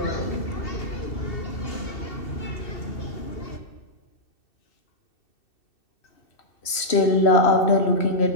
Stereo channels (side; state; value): right; late; 3.1 ms